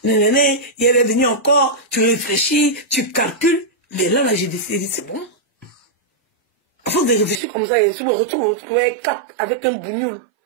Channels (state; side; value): drops out; left; at 7.4 s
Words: Nénéné, il est venu encore. Tu réfléchis, tu calcules. Mais là, j'ai décidé, c'est bon. À force de réfléchir comme ça, je me retrouve avec un bougnoule.